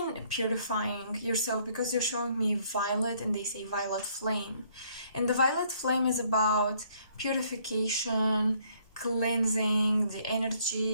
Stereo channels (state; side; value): inverted; both; correlation -0.65